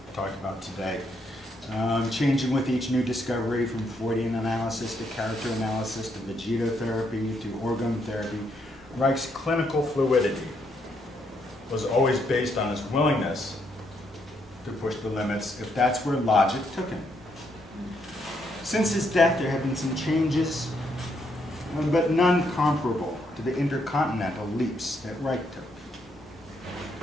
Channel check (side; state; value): both; normal; correlation 0.75